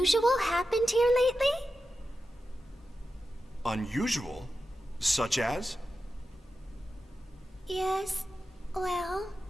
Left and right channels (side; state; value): both; normal; correlation 0.91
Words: happened here lately? Unusual? Such as? Yes, well,